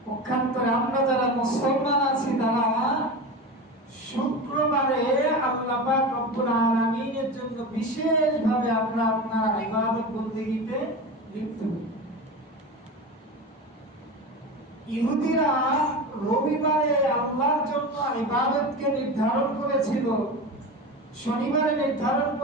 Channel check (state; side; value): normal; both; correlation 0.26